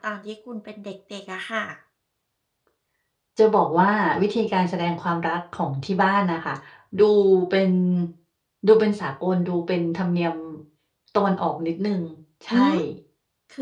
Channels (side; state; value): both; identical; correlation 1.00